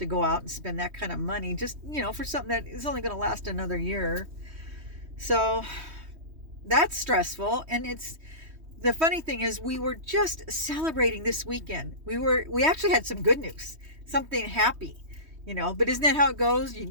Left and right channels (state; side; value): late; left; 3.1 ms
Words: go out and spend that kind of money just, you know, for something that is only going to last another year. So that's stressful. And it's, the funny thing is, we were just celebrating this weekend. We actually had some good news, something happy, you know, but isn't that how it goes?